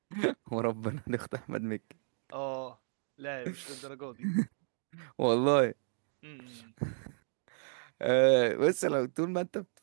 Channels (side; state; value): left; silent; 56 dB below the other